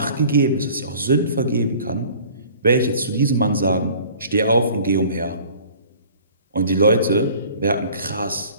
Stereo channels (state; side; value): inverted; both; correlation -0.49